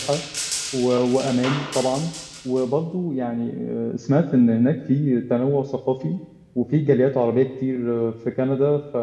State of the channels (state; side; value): identical; both; correlation 1.00